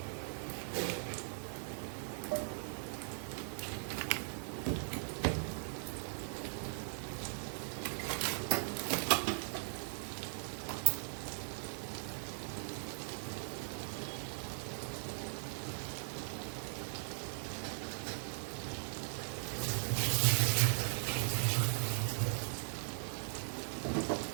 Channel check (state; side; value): silent; left; digital silence